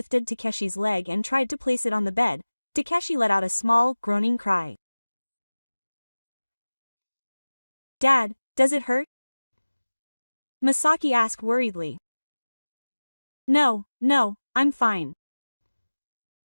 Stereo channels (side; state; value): both; inverted; correlation -1.00